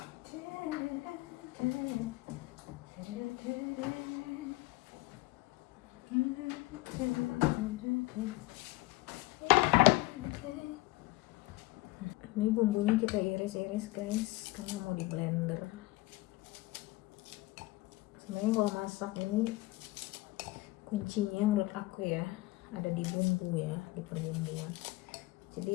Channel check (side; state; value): right; quieter; 20.1 dB